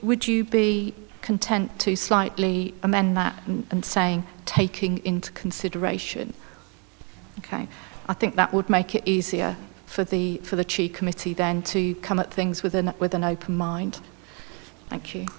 you be content to slightly amend that and saying taking into consideration? Okay, I think that would make it easier for the Chi committee then to come at things with an open mind. Thank you.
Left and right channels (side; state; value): left; quieter; 35.1 dB